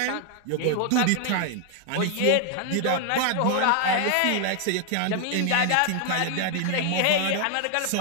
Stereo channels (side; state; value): both; different; correlation 0.00